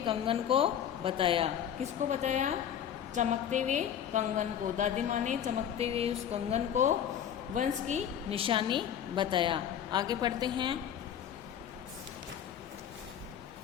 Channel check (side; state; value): right; quieter; 9.4 dB